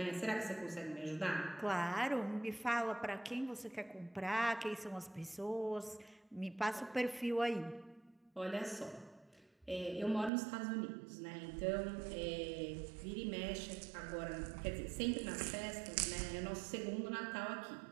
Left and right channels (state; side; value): drops out; left; at 10.3 s